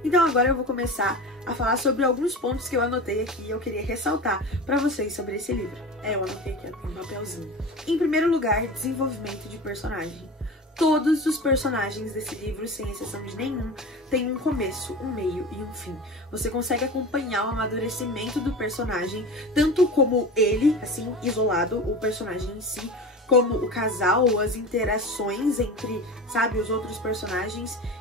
então agora eu vou começar a falar sobre alguns pontos que eu anotei aqui e eu queria ressaltar para vocês sobre esse livro. Eu anotei aqui, tem um papelzinho. Em primeiro lugar, desenvolvimento de personagem. Todos os personagens desse livro, sem exceção de nenhum, têm um começo, um meio e um fim. Você consegue acompanhar o amadurecimento do personagem, tanto como ele, assim, isolado, o personagem em si, como o casal, as interações entre, sabe, os outros personagens.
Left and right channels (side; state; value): both; normal; correlation 0.31